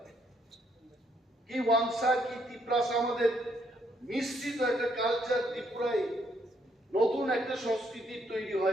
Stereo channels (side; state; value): both; normal; correlation 0.72